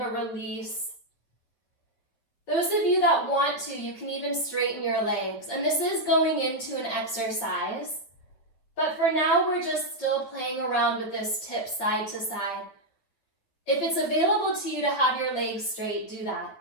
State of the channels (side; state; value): right; late; 9.0 ms